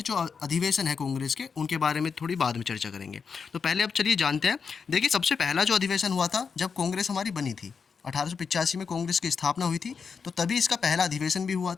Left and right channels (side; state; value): right; quieter; 5.8 dB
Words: जो अधिवेशन है कांग्रेस के, उनके बारे में थोड़ी बाद में चर्चा करेंगे। तो पहले अब चलिए जानते हैं। देखिए, सबसे पहला जो अधिवेशन हुआ था जब कांग्रेस हमारी बनी थी, 1885 में कांग्रेस की स्थापना हुई थी, तो तभी इसका पहला अधिवेशन भी हुआ